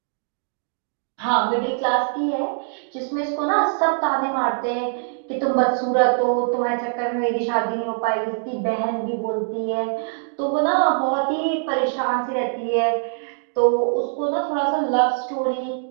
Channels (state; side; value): silent; left; digital silence